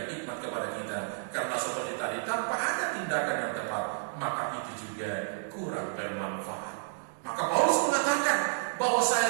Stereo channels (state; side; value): silent; left; digital silence